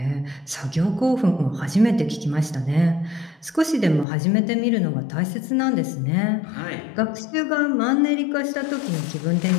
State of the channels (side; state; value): right; drops out; at 4.0 s